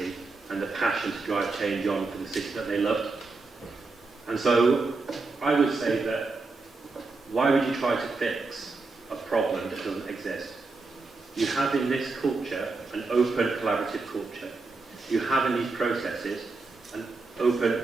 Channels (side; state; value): left; quieter; 3.8 dB